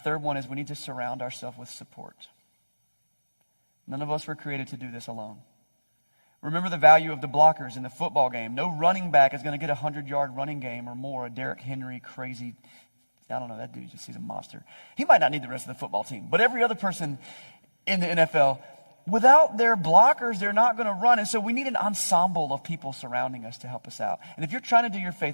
one is we need to surround ourselves with support. None of us were created to do this alone. Remember the value of the blockers in the football game. No running back is going to get a 100-yard running game or more. A Derrick Henry crazy, I don't know, that dude just he's a monster. He might not need the rest of the football team. But every other person in the NFL, without their blockers, they're not going to run. And so we need an ensemble of people surrounding us to help us out. And if you're trying to do your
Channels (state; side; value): inverted; both; correlation -1.00